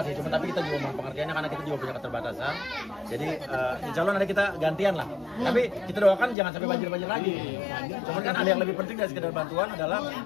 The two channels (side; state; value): right; drops out; at 6.4 s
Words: sih, cuma tapi kita juga mohon pengertiannya karena kita juga punya keterbatasan. Jadi insya Allah nanti kita gantian lah. Tapi kita doakan jangan sampai banjir-banjir lagi. Cuman kan ada yang lebih penting dari sekedar bantuan adalah